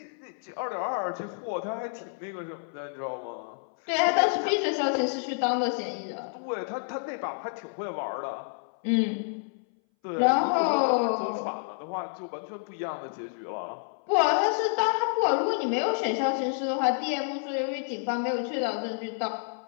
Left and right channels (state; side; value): silent; right; 59 dB below the other